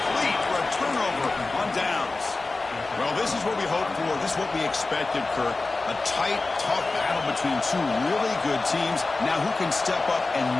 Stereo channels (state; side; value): quieter; right; 3.5 dB